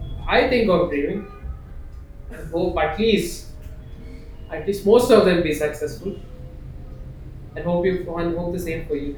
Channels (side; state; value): both; identical; correlation 1.00